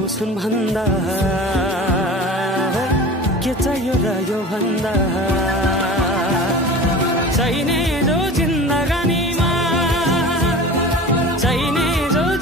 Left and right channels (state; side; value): normal; both; correlation 0.37